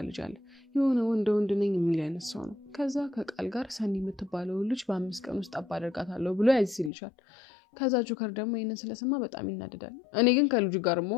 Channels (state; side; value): drops out; right; at 6.9 s